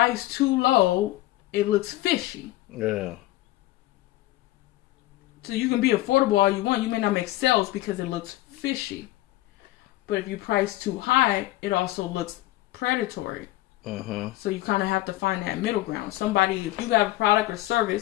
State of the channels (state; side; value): quieter; right; 17.1 dB